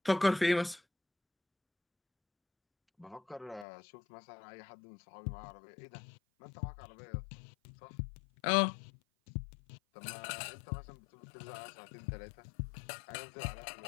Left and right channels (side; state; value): right; drops out; at 3.7 s